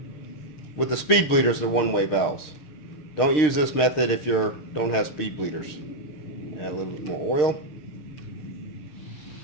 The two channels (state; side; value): late; right; 6.6 ms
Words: With the speed bleeders, they're one-way valves. Don't use this method if you don't have speed bleeders. Add a little bit more oil.